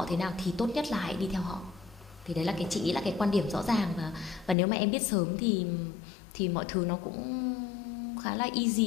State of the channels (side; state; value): right; drops out; at 4.5 s